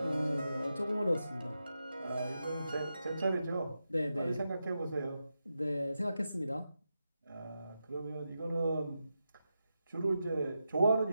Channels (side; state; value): both; inverted; correlation -0.89